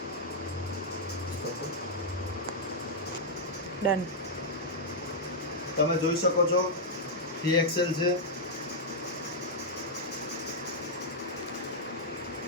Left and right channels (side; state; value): both; normal; correlation -0.05